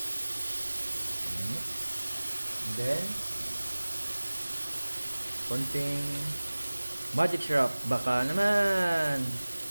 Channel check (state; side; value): inverted; both; correlation -1.00